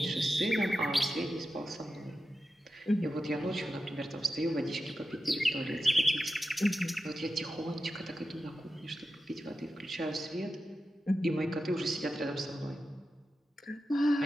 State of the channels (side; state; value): both; normal; correlation 0.91